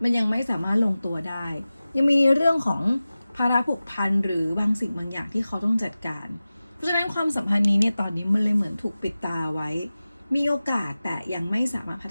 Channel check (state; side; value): inverted; both; correlation -0.96